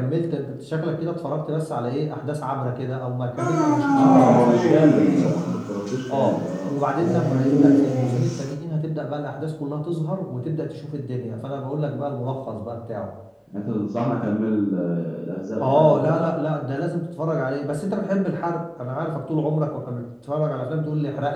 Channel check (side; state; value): both; identical; correlation 1.00